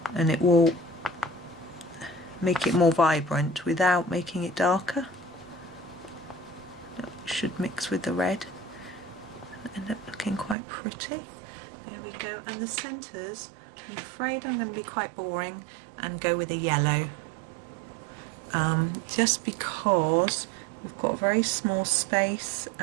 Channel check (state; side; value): drops out; left; at 10.6 s